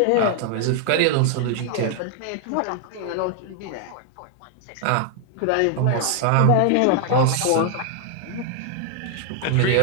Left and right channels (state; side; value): different; both; correlation 0.00